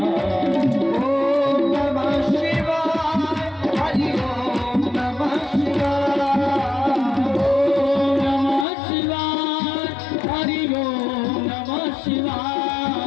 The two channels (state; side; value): drops out; right; at 8.7 s